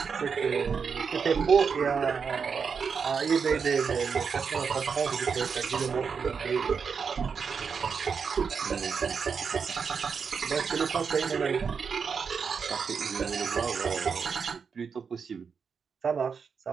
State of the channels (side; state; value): left; quieter; 6.0 dB